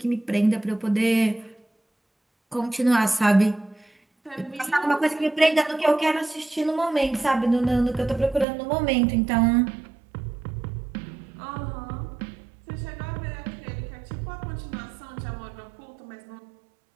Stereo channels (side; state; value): left; drops out; at 8.5 s